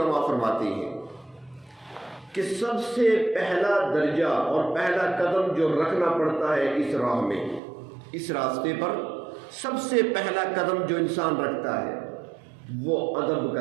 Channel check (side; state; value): left; drops out; at 7.6 s